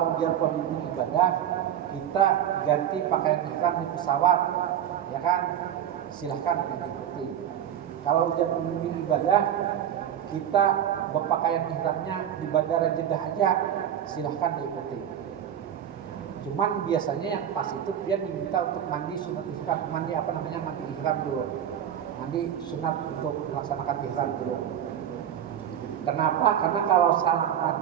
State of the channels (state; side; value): quieter; left; 10.0 dB